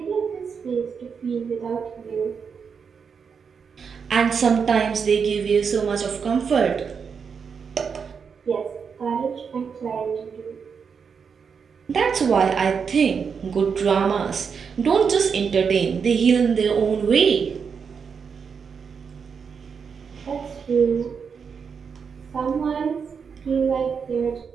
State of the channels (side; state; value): left; quieter; 6.2 dB